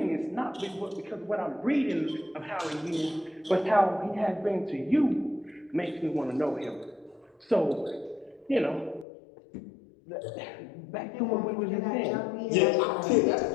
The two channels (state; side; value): drops out; right; at 9.1 s